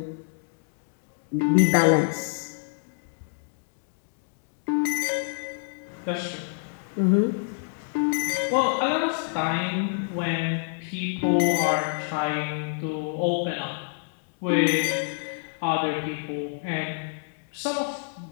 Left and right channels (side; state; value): right; silent; digital silence